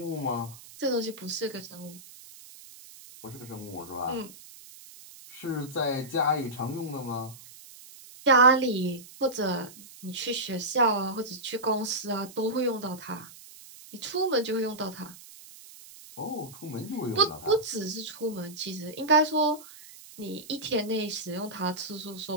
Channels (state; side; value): noise; right; hiss, 18 dB below the sound